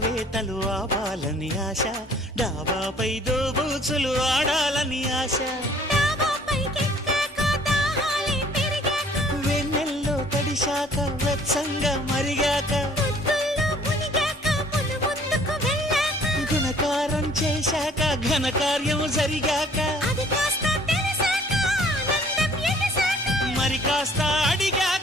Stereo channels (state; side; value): normal; both; correlation 0.56